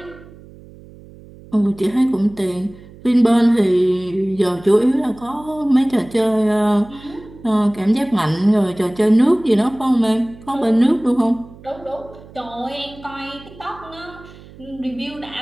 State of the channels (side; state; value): right; noise; hum, 21 dB below the sound